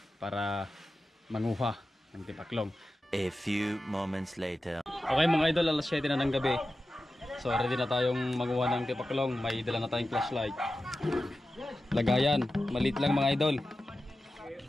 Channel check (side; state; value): both; normal; correlation 0.93